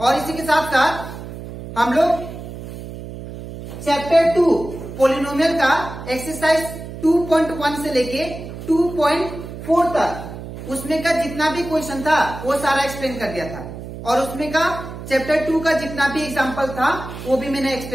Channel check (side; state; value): right; noise; hum, 11 dB below the sound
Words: और इसी के साथ साथ हम लोग चैप्टर 2 पॉलिनोमियल का एक्सरसाइज 2.1 से लेके 2.4 तक उसमें का जितना भी क्वेश्चन था वो सारा एक्सप्लेन कर दिया था। और उसमें का चैप्टर 2 का जितना भी एग्जांपल था वो भी मैंने